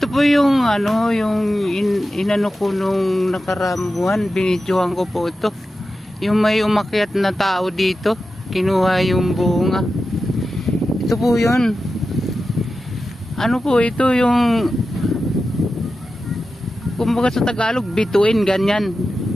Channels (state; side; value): normal; both; correlation 0.92